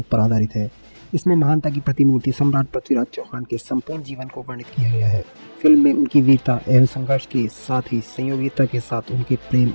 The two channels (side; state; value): both; inverted; correlation -1.00